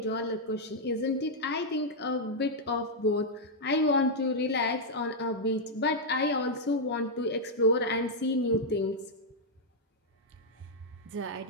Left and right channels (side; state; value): both; normal; correlation -0.03